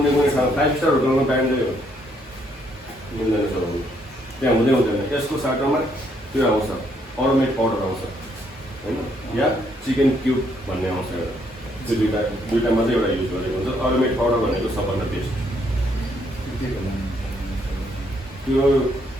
ठाउँ 5 स्टार होटलमा ब्यान्डै हो, मिल्दैन चलाउनु, त्यहाँ हुँदैन। यसको साटोमा त्यो आउँछ, अरोमेट पाउडर आउँछ होइन, या चिकन क्युब भन्ने आउँछ एउटा। त्यो दुईवटा मात्रै एउटा युज गरेको हुन्छ। अरोमेट पाउडर भनेको सबभन्दा बेस्ट। त्यो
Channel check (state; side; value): normal; both; correlation 0.71